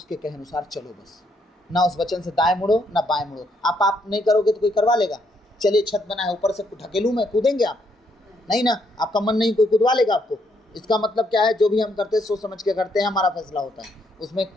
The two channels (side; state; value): both; normal; correlation 0.74